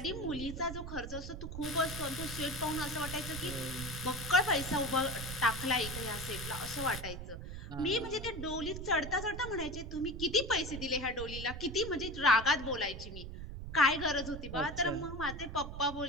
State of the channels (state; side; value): noise; right; rumble, 8 dB below the sound